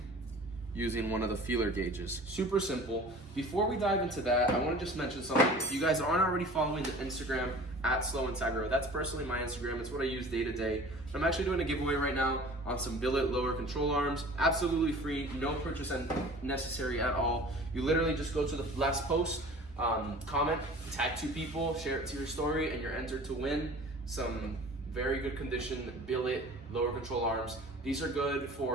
using one of the feeler gauges. Super simple. Before we dive into that, I want to just mention something. If you guys aren't already following the Instagram at Slow Integra, that's personally my Instagram. It's what I use day to day. I'm actually doing a giveaway right now on some billet lower control arms. Absolutely free, no purchase necessary at all. You literally just go to the last post, comment, tag 2 people, share it to your story, and you're entered to win some very good condition billet lower control arms. These are good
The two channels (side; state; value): both; normal; correlation 0.44